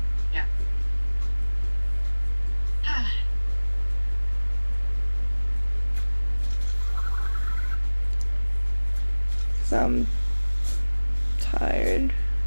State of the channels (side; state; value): both; inverted; correlation -1.00